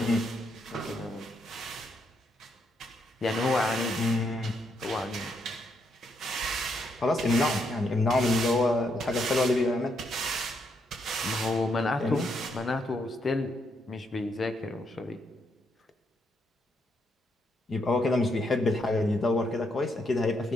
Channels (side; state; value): both; normal; correlation 0.77